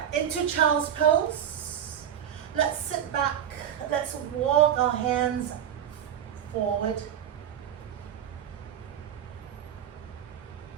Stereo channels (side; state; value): left; quieter; 9.6 dB